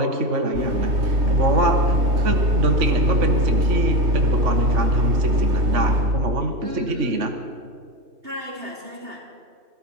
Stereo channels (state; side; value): late; left; 3.5 ms